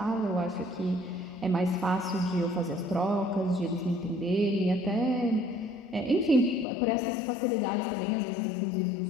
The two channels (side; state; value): right; drops out; at 6.7 s